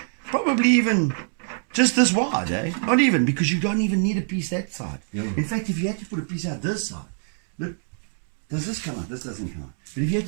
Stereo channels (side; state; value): left; silent; digital silence